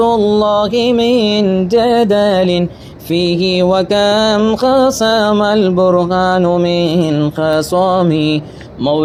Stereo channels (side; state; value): both; identical; correlation 1.00